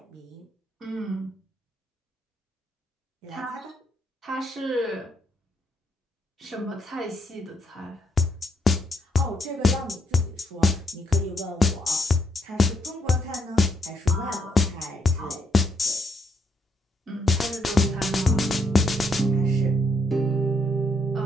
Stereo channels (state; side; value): normal; both; correlation 0.75